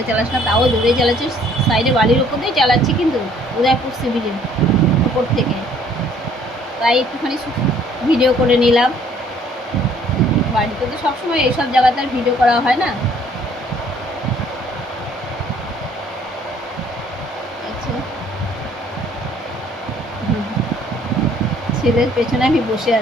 চালাস না। তাও জোরেই চালাচ্ছিস, সাইডে বালির ওপর দিয়েই চালাচ্ছি, কিন্তু উদয়পুর সি বিচের ওপর থেকে। তাই একটুখানি ভিডিও করে নিলাম। বাড়িতে তো সবসময় এইসব জায়গাতে আর ভিডিও করা হয় না। আচ্ছা, ছেলের পেছনে আমি বসে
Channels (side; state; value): both; normal; correlation 0.60